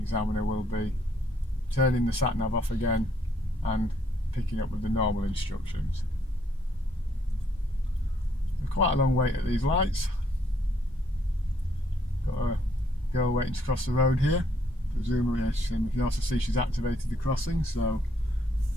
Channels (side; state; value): both; normal; correlation 0.69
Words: will be turning the Sat Nav off again and picking up with the normal instructions. Quite a long wait at these lights. Got a girl waiting to cross the road here. Presumably, you can also see she's activated the crossing, so,